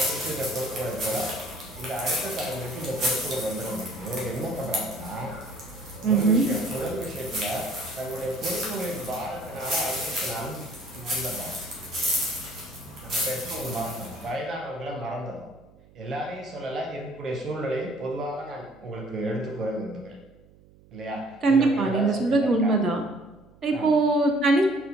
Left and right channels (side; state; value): right; noise; hum, 26 dB below the sound